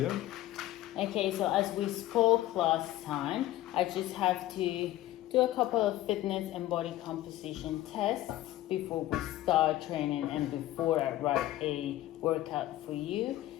Okay, so as we spoke last time, I just have to do a couple of fitness and body composition tests before we start training and before I write a workout for you.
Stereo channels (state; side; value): quieter; right; 15.0 dB